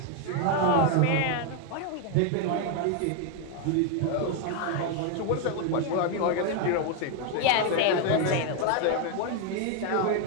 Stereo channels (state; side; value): different; both; correlation 0.01